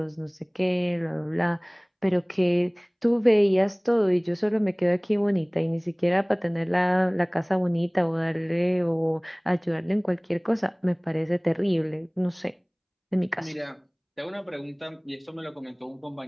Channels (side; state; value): both; identical; correlation 1.00